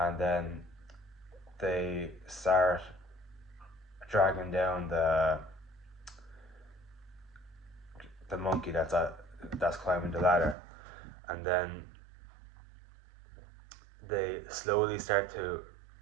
then they start dragging down the monkey that's climbing the ladder, and then they slowly start to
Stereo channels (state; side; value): drops out; left; at 10.6 s